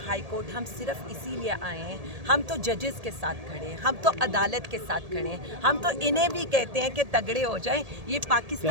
ہائی کورٹ ہم صرف اسی لیے آئے ہیں, ہم تو ججز کے ساتھ کھڑے ہیں, ہم تو عدالت کے ساتھ کھڑے ہیں, ہم تو انہیں بھی کہتے ہیں کہ تگڑے ہو جائیں. یہ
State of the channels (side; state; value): left; late; 1.8 ms